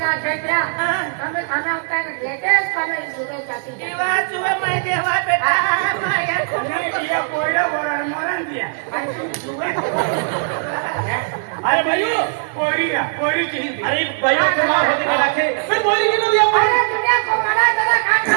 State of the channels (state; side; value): silent; left; digital silence